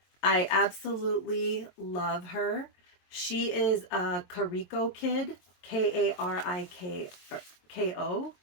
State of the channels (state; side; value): late; right; 22 ms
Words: I absolutely love her. She is a Kariko kid, Kariko